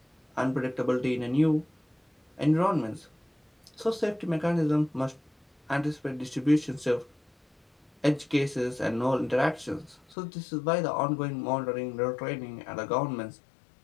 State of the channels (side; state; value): right; drops out; at 10.2 s